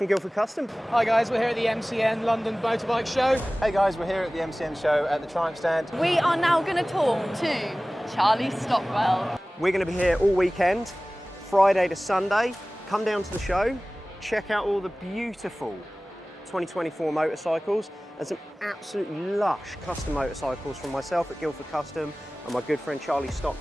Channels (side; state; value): both; normal; correlation 0.98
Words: Guildford Custom. Hi guys, we're here at the MCN London Motorbike Show. Hey guys, we're here at the MCN show at the Triumph stand. We are now going to talk to Charlie Stockwell. We're going to be here all weekend, Friday to Sunday. Come down to the show, check out all the beautiful 2024 motorcycles and some absolutely lush custom motorcycles from myself at Guildford Custom and my good friend Charlie